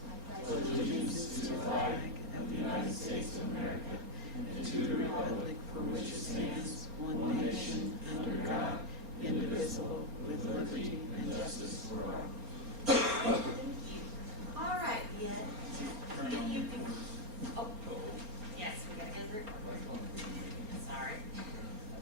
I pledge allegiance to the flag of the United States of America and to the republic for which it stands, one nation, under God, indivisible, with liberty and justice for all. Thank you. All right, yeah. If you can. Oh, yes, we gotta go through. Sorry.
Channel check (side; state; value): left; late; 4.4 ms